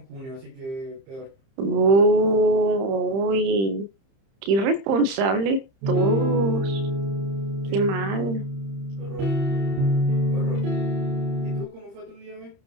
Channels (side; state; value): left; late; 30 ms